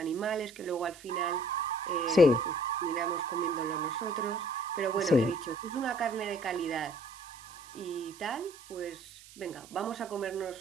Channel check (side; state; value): right; noise; hiss, 20 dB below the sound